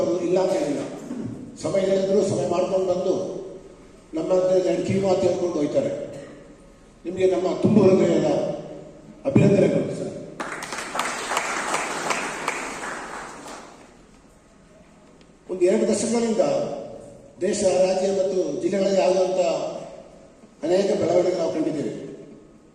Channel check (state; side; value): identical; both; correlation 1.00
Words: ಅವರು ಇಲ್ಲ ಅಂತ ಹೇಳಿಲ್ಲ. ಸಮಯ ಹೇಳಿದ್ರು ಸಮಯ ಮಾಡ್ಕೊಂಡು ಬಂದು ನಮ್ಮ ಕಿವಿ ಮಾತು ಹೇಳ್ಕೊಂಡು ಹೋಗ್ತಾರೆ. ನಿಮಗೆ ನಮ್ಮ ತುಂಬ ಹೃದಯದ ಅಭಿನಂದನೆಗಳು ಸರ್. ಒಂದು 2 ದಶಕಗಳಿಂದ ದೇಶ, ರಾಜ್ಯ ಮತ್ತು ಜಿಲ್ಲೆಗಳಲ್ಲಿ ಆಗುವಂಥ ಅನೇಕ ಬೆಳವಣಿಗೆ ನಾವು ಕಂಡಿದ್ದೇವೆ.